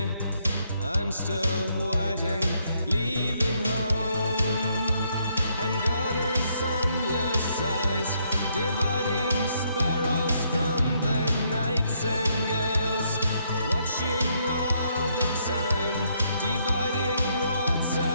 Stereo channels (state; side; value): inverted; both; correlation -0.73